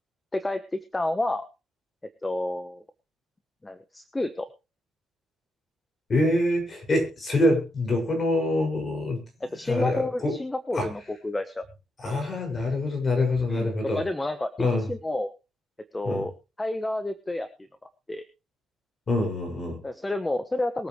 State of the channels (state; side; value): normal; both; correlation 0.84